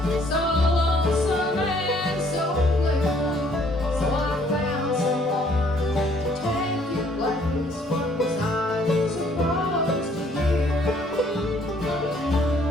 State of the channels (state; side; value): normal; both; correlation 0.63